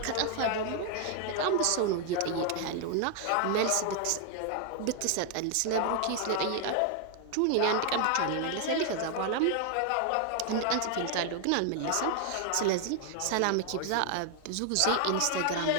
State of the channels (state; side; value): different; both; correlation 0.00